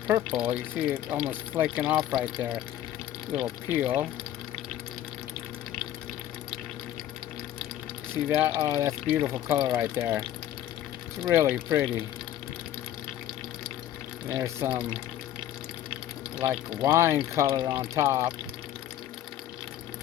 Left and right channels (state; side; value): quieter; right; 12.1 dB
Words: purple. You see it almost flaking off right there. Little peel. See that? Oh, that's beautiful color right there. It's really pretty. There's some like wine color on top.